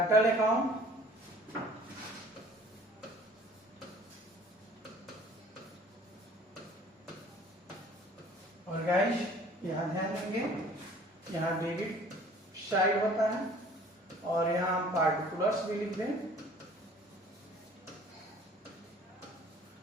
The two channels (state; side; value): normal; both; correlation 0.51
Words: अकाउंट, और गाइस यहां ध्यान देंगे, यहां डेबिट साइड होता है, और यहां हम पार्टिकुलर्स भी लिख दें,